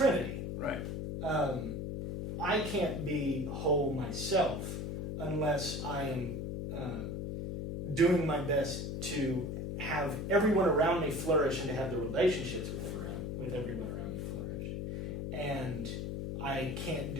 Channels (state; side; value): noise; left; hum, 3 dB below the sound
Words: Right. I can't be whole myself unless I am doing my best to have everyone around me flourish and to have the relationships with everyone around me flourish. And I can't